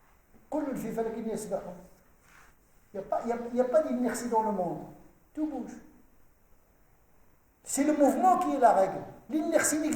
Il n'y a pas d'inertie dans le monde. Tout bouge. C'est le mouvement qui est la règle. L'inertie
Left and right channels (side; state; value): both; identical; correlation 1.00